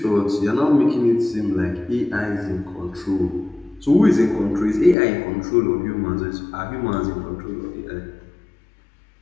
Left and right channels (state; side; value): drops out; right; at 5.0 s